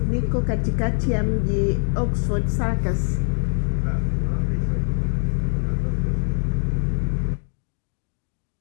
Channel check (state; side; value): silent; right; digital silence